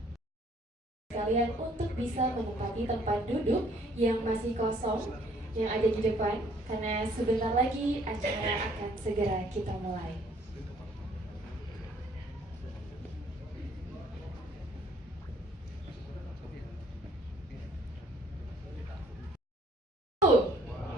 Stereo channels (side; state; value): both; normal; correlation 0.61